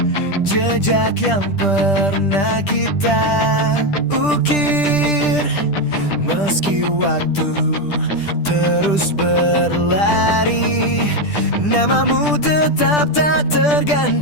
jejak yang pernah kita ukir. Meski waktu terus berlari, namamu tetap tak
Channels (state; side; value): late; right; 10 ms